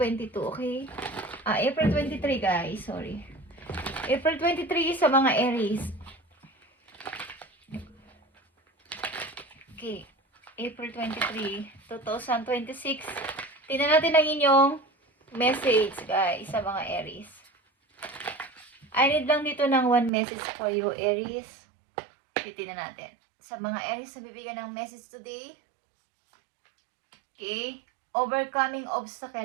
okay? April 23 guys, sorry. April 23 sa mga Aries. Okay, April 23, 2026. Tingnan natin ang inyong message guys sa mga Aries. I need lang dito ng one message for you, Aries. Titingnan natin. Sa mga Aries na bibigyan ng message today. Okay. Overcoming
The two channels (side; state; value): left; drops out; at 20.1 s